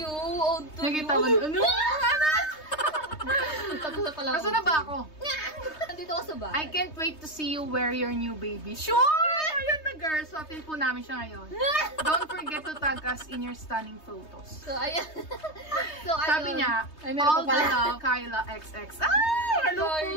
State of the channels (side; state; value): right; late; 3.2 ms